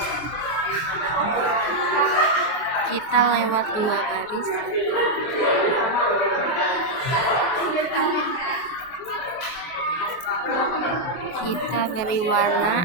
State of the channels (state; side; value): late; right; 23 ms